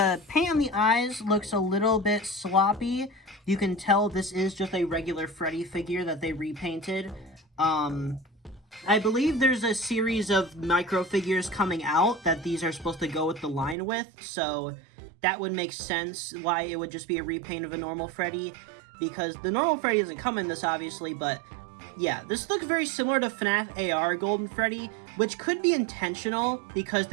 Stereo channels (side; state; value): left; drops out; at 13.8 s